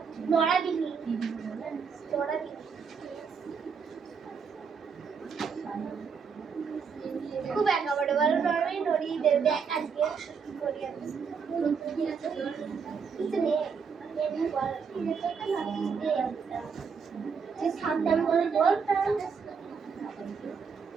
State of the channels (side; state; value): left; quieter; 6.0 dB